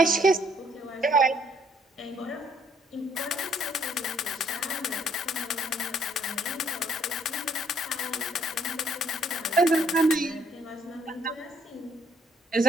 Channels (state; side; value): normal; both; correlation 0.65